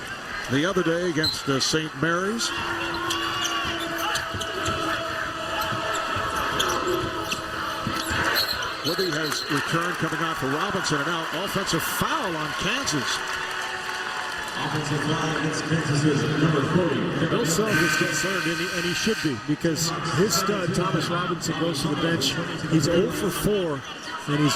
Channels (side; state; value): both; identical; correlation 1.00